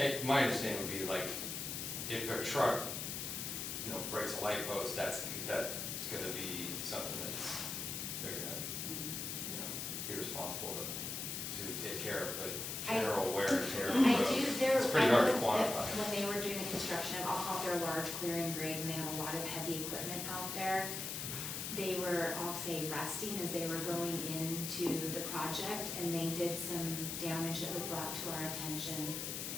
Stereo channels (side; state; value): left; noise; hiss, 4 dB below the sound